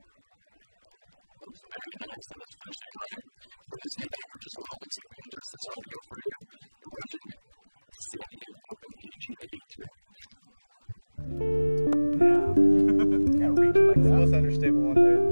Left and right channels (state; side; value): inverted; both; correlation -1.00